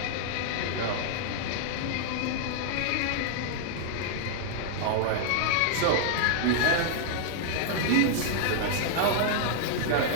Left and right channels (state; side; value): different; both; correlation 0.00